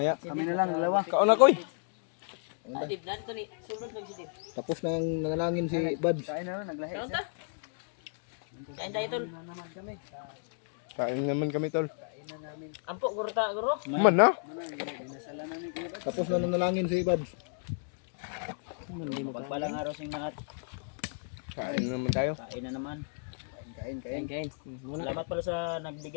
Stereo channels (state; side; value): silent; right; digital silence